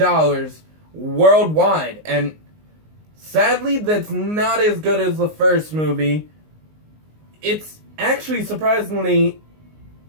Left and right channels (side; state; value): left; late; 19 ms